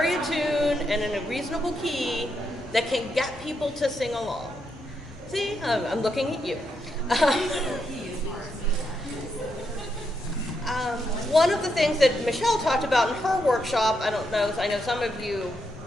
a tune and in a reasonable key that can get people to sing along. See, I'm looking at you. One of the things that Michelle talked about in her workshop, I know some of you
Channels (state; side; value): normal; both; correlation 0.81